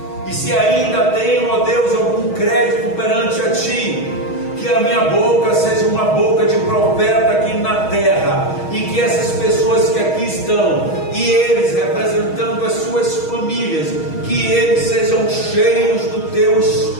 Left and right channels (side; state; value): right; late; 6.3 ms